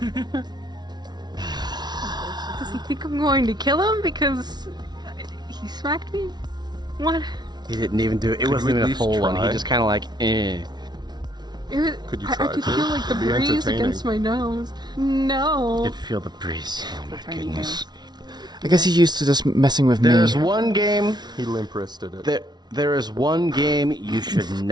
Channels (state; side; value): late; left; 0.20 ms